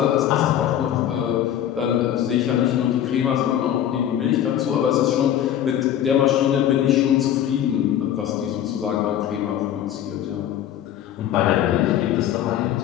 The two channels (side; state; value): right; quieter; 10.8 dB